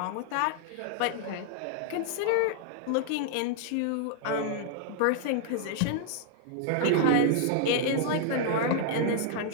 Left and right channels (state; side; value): different; both; correlation 0.00